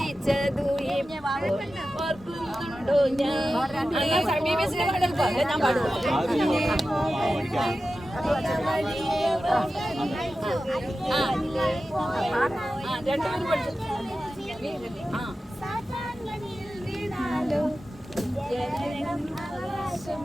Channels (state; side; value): normal; both; correlation 0.93